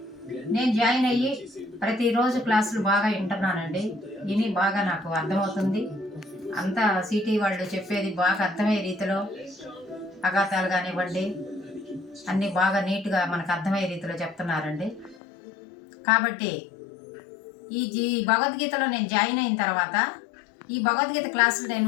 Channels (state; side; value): drops out; right; at 15.2 s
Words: నేను జాయిన్ అయ్యి ప్రతిరోజు క్లాసులు బాగా వింటున్నానండి. విని బాగా నాకు అర్థమవుతుంది. అంతా సిటీ వాళ్ళు చెప్పేది బాగా అర్థమయ్యే రీతిలో, అఘాతాలు కానివ్వండి అన్నీ బాగా నీట్గా మనకు అర్థమయ్యే రీతిలో చెప్తున్నారండి. కాబట్టి ఈ భగవద్గీతలో నేను జాయిన్ అయిన తర్వాత ఈ భగవద్గీత క్లాసులు